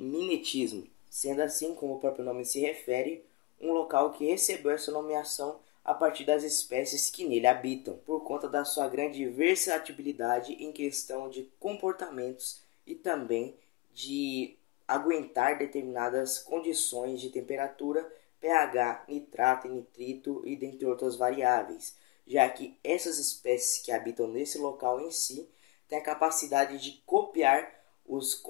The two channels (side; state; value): right; quieter; 19.3 dB